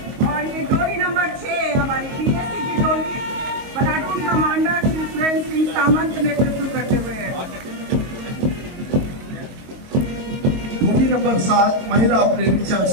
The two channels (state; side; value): late; left; 22 ms